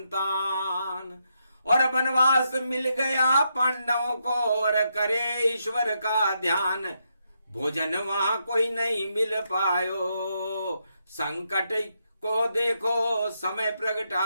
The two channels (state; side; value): inverted; both; correlation -0.80